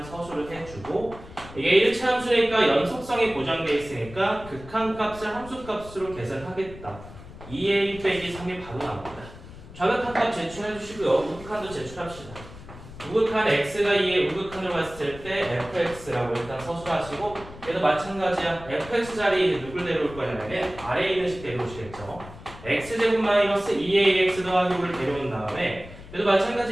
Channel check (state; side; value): noise; left; rumble, 16 dB below the sound